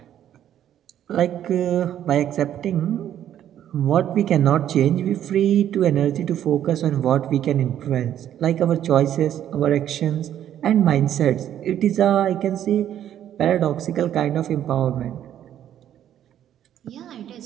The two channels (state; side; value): quieter; left; 10.8 dB